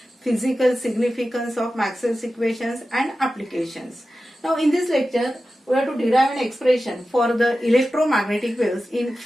physical significance of Maxwell's equations and applications. Now in this lecture we have to derive an expression for the electromagnetic waves in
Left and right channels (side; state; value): both; normal; correlation 0.93